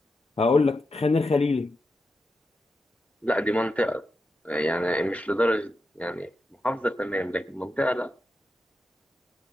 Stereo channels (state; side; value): normal; both; correlation 0.88